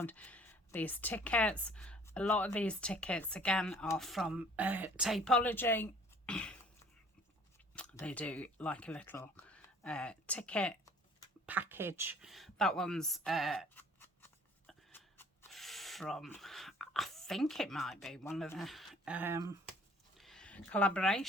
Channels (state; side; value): normal; both; correlation 0.54